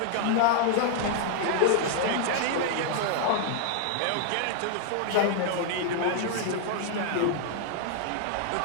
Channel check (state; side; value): different; both; correlation -0.01